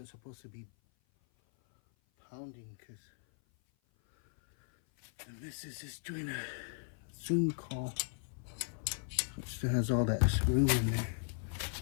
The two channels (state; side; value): silent; right; 53 dB below the other